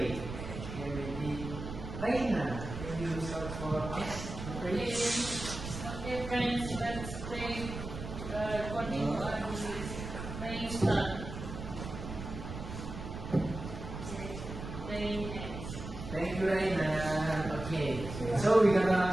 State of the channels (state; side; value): noise; right; rumble, 8 dB below the sound